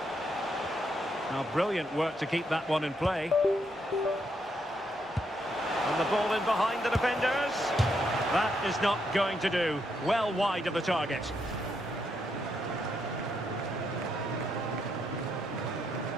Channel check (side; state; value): both; normal; correlation 0.77